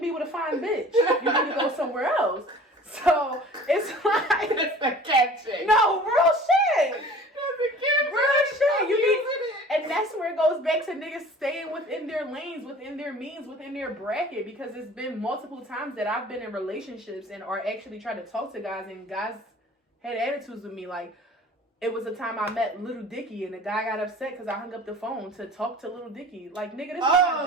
be with a fine bitch. You need to go somewhere else. So, it's like... It's a catching. No, real shit. Real shit. You need, and that's where it goes back to niggas staying within their lanes, within their means, within their bracket. Because it's been multiple times that I've been in relationships and are actually trying to talk to guys, and guys had attitudes with me. Like, it was a time I met Little Dicky, and the guy got upset because I hung up the phone to talk to Little Dicky. Like, nigga, this is my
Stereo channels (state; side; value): normal; both; correlation 0.45